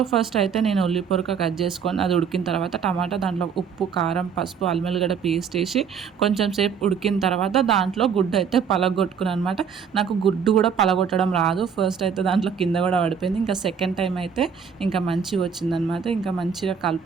ఫస్ట్ అయితే నేను ఉల్లి పొరక కట్ చేసుకొని అది ఉడికిన తర్వాత టమాటా, దాంట్లో ఉప్పు, కారం, పసుపు, అల్లం వెల్లిగడ్డ పేస్ట్ వేసి కొంచెం సేపు ఉడికిన తర్వాత దాంట్లో గుడ్డు అయితే పలగొట్టుకున్నాను అనమాట. నాకు గుడ్డు కూడా పలగొట్టడం రాదు. ఫస్ట్ అయితే దాంట్లో కింద కూడా పడిపోయింది. ఇంకా సెకండ్ టైం అయితే ఇంకా మంచిగా వచ్చిందనమాట. ఇంకా మంచిగా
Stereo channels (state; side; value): quieter; left; 6.8 dB